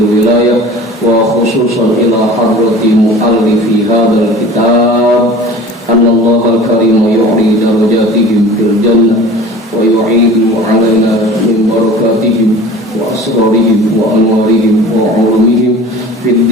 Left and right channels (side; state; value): both; normal; correlation 0.42